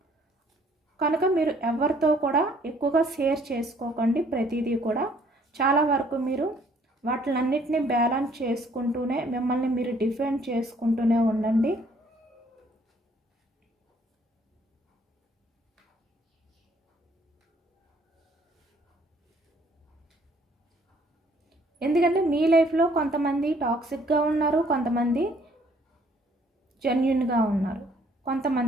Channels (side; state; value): both; normal; correlation 0.62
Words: కనుక మీరు ఎవరితో కూడా ఎక్కువగా షేర్ చేసుకోకండి. ప్రతిదీ కూడా చాలా వరకు మీరు వాటిలన్నిటినీ బ్యాలెన్స్ చేసుకుంటూనే మిమ్మల్ని మీరు డిఫెండ్ చేసుకుంటూనే ఉండండి. ఎందుకంటే మీ లైఫ్లో కొంతమంది టాక్సిక్గా ఉన్నారు, కొంతమంది జెన్యున్గా ఉన్నారు.